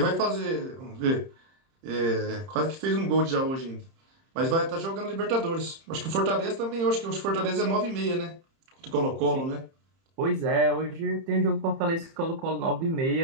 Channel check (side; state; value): left; late; 30 ms